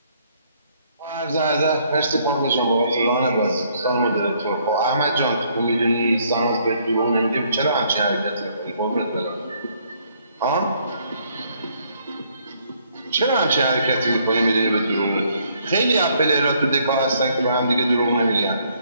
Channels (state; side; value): inverted; both; correlation -0.67